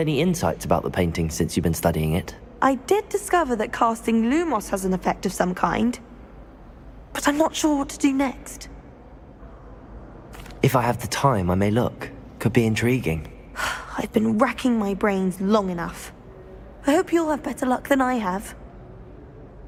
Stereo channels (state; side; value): identical; both; correlation 1.00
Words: insights about the painting since you've been studying it? I did discover that casting Lumos has an effect of some kind. But I'm not sure what to do next. If I have the time, I may look. Could be intriguing. I've been racking my brains long enough. I hope you'll have better luck than I have.